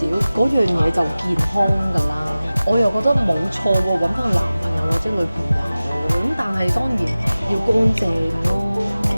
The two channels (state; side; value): inverted; both; correlation -0.97